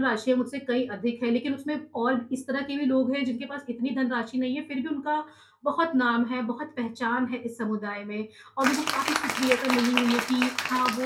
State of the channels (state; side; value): identical; both; correlation 1.00